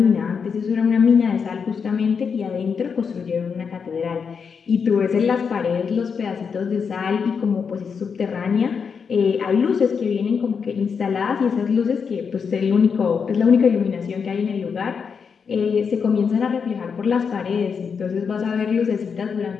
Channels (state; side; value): quieter; right; 6.1 dB